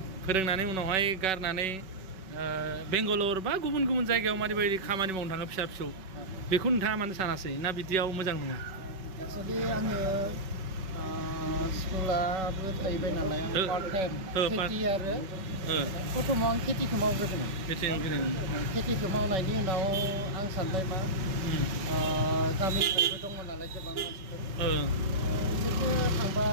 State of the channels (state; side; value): late; left; 5.3 ms